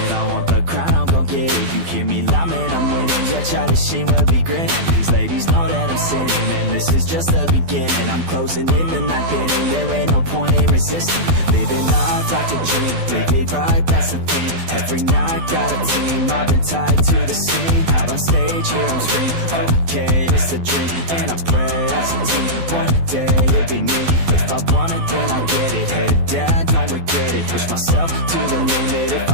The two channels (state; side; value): late; left; 12 ms